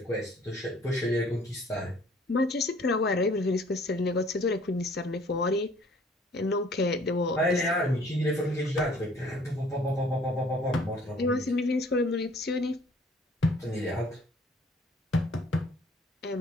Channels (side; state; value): both; normal; correlation 0.57